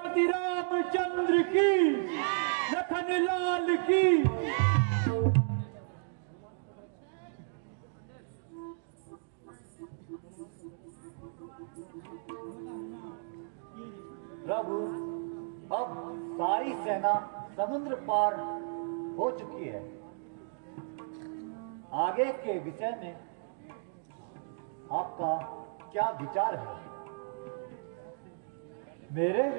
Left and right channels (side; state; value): left; silent; digital silence